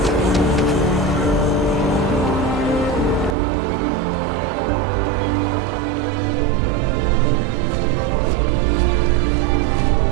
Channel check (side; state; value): left; drops out; at 3.4 s